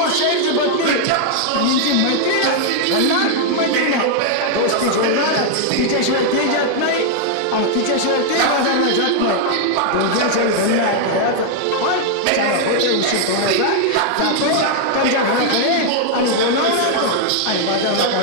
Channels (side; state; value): both; different; correlation 0.00